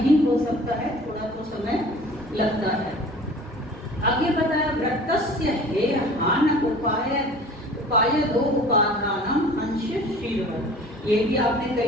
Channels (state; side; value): normal; both; correlation 0.45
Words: हो सकता है, थोड़ा तो समय लगता है। आगे बताया व्रतस्य हे हान उपाय दो उपादानम अंश शीर्षक। ये भी आपने